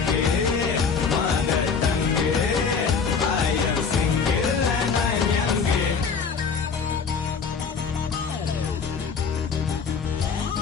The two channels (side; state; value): right; quieter; 5.7 dB